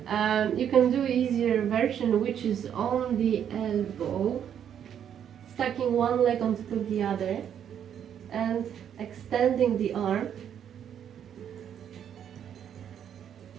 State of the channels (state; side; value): quieter; left; 9.1 dB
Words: You can do easier version, which is on the elbow, stacking one leg on top of the other and extending the arm.